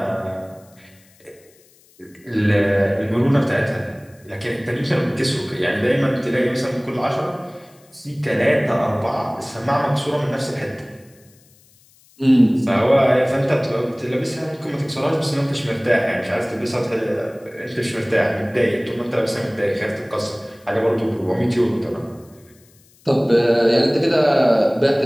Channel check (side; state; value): left; noise; hiss, 30 dB below the sound